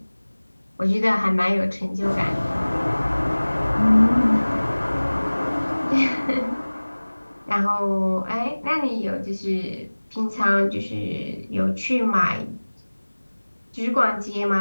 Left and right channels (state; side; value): inverted; both; correlation -1.00